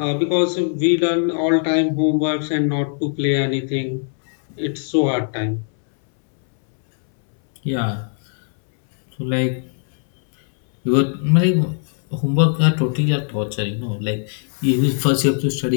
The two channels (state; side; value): silent; right; 66 dB below the other